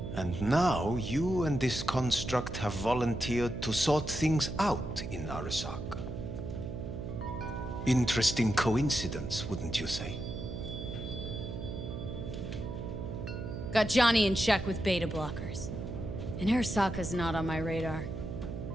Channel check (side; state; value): right; noise; hum, 7 dB below the sound